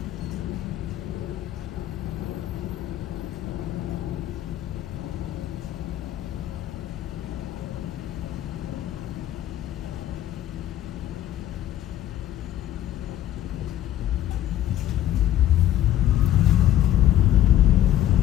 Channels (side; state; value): right; quieter; 12.4 dB